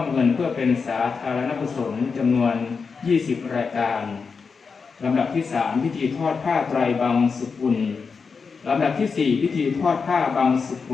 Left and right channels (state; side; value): quieter; right; 5.2 dB